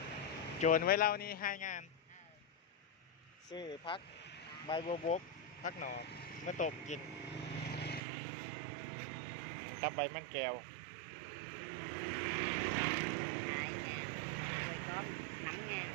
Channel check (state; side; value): drops out; left; at 8.0 s